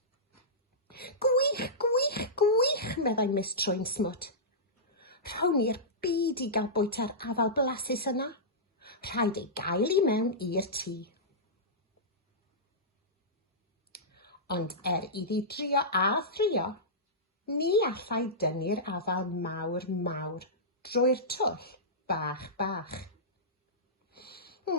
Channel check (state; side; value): normal; both; correlation -0.16